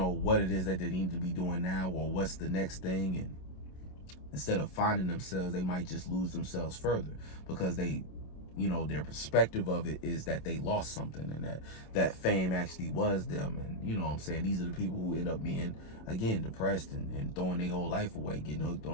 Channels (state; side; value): late; right; 27 ms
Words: what it is that they need to be doing now, or what's the next thing, and instead of finding themselves, they might just lose themselves further, because they you know, their perspective of it is that they lost something, and that fame actually was them. And you know what I'm saying, these are the people who end up being, again, depressed and throwing their whole life away, getting hooked